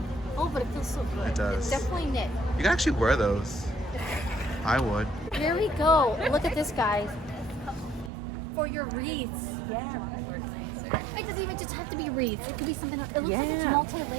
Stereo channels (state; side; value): drops out; left; at 8.1 s